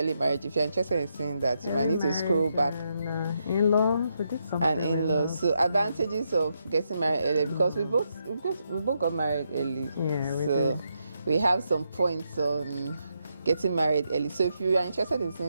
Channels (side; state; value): both; inverted; correlation -0.81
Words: marriage. If you're interested in seeing that, you might need to scroll back. And in-laws, we did something. And in-laws. So advantages of getting married early, because we both got married early. Yeah, so we have some points on getting married early. So if you are interested in